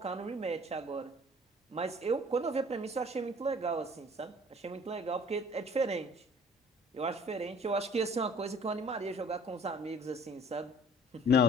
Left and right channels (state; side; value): normal; both; correlation 0.52